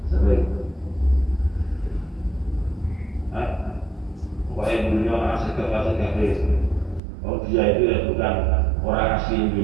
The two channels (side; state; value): left; drops out; at 7.0 s